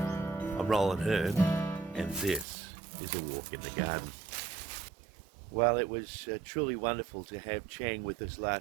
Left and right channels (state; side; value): drops out; left; at 2.5 s